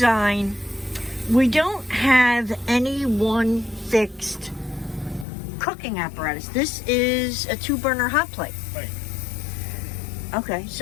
we don't have any one fixed cooking apparatus. This is a 2-burner hot plate. Right. Okay,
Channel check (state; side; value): drops out; right; at 5.2 s